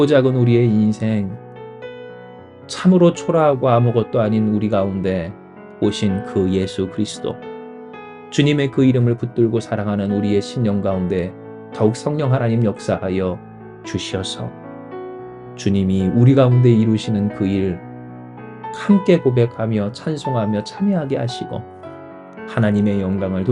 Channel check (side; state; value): both; identical; correlation 1.00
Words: 작은 우리의 인생, 참으로 초라하고 아무것도 아닌 우리 가운데 오신 그 예수 그리스도, 주님의 그 이름을 붙들고 사랑하는 우리의 심령 가운데 더욱 성령 하나님 역사하여 주시어서 주님이 우리 가운데 이루시는 그 일 함께 고백하며 찬송하며 참여하게 하시고 하나님의 영광을